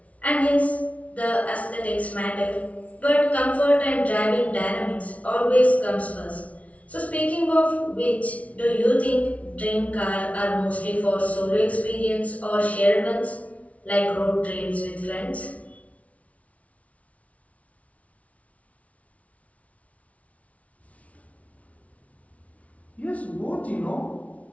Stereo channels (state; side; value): late; right; 0.066 ms